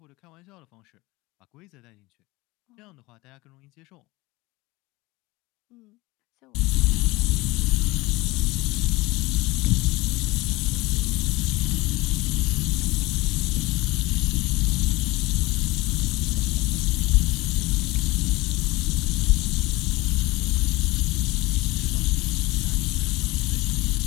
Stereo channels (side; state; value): right; quieter; 21.4 dB